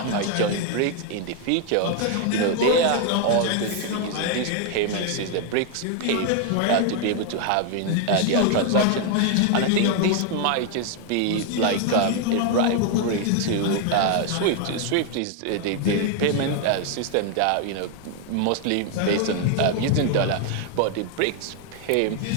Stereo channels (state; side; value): different; both; correlation 0.01